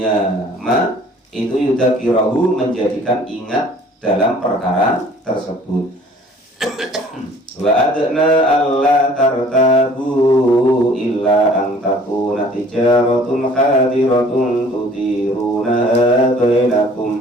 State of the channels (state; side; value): normal; both; correlation 0.53